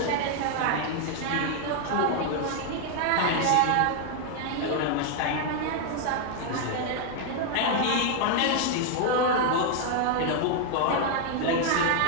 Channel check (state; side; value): different; both; correlation 0.00